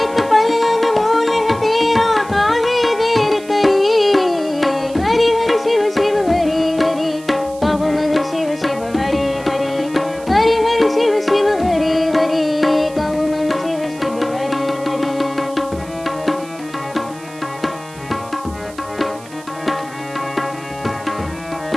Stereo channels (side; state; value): right; noise; hiss, 21 dB below the sound